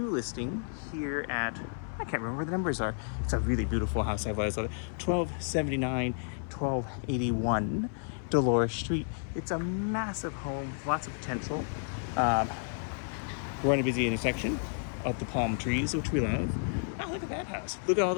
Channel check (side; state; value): right; silent; 57 dB below the other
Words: listing here at, I can't remember what the numbers are. It's a really beautiful house. I've always loved it. 1279, 1281 Dolores Street. It's a massive home, lots of potential. We're in a busy intersection of the palm trees, which we love. Oh, look at that house. Look at all